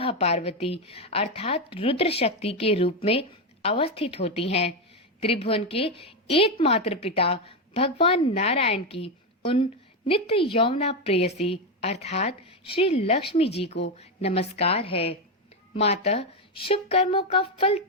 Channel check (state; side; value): normal; both; correlation 0.09